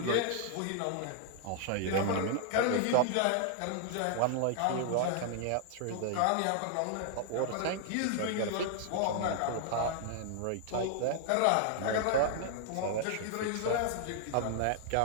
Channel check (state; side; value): different; both; correlation -0.01